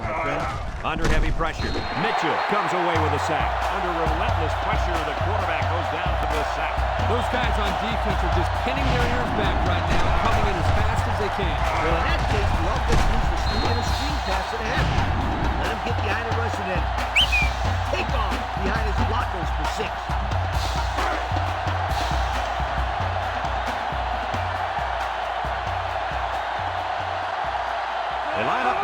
my friend. Under heavy pressure, Mitchell comes away with a sack. Under relentless pressure, the quarterback goes down for the sack. Those guys on defense are just pinning their ears back right now, coming in as fast as they can. Well, in that case, the offense needs to sneak in a screen pass to the half. Let him get behind the rush and then take off behind his blockers for 6. They line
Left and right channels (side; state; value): both; identical; correlation 1.00